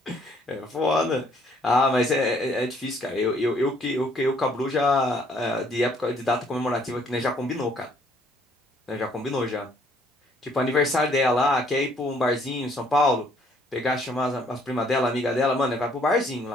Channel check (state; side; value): normal; both; correlation 0.64